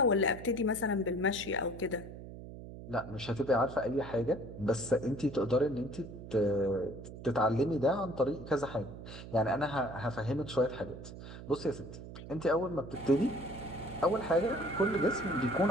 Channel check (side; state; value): right; noise; hum, 13 dB below the sound